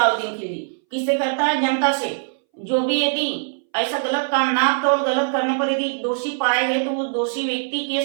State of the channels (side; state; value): left; silent; 62 dB below the other